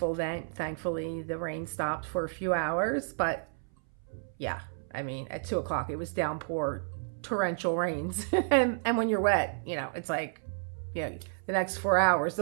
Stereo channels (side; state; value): left; silent; 57 dB below the other